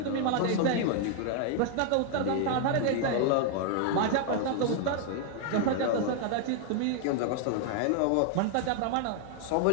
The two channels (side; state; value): both; different; correlation 0.00